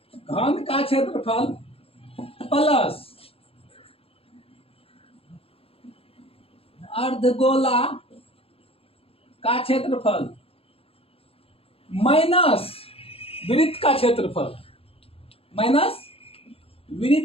घन का क्षेत्रफल प्लस अर्धगोला का क्षेत्रफल माइनस वृत्त का क्षेत्रफल, माइनस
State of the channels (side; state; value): right; late; 0.27 ms